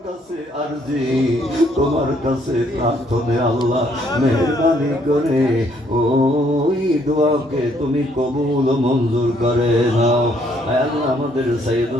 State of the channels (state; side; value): normal; both; correlation 0.68